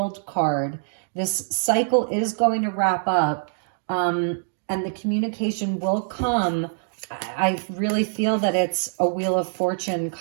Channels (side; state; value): left; silent; digital silence